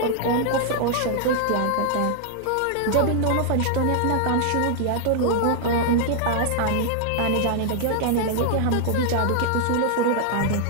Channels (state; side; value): different; both; correlation -0.01